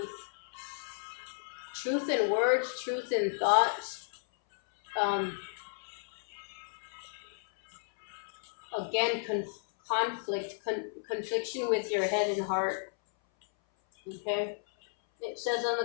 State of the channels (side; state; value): right; silent; 56 dB below the other